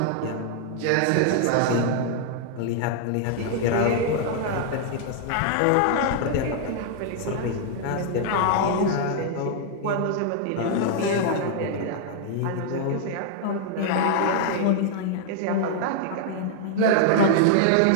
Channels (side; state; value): both; different; correlation -0.01